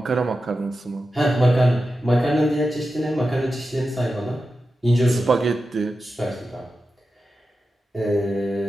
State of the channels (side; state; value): both; normal; correlation 0.91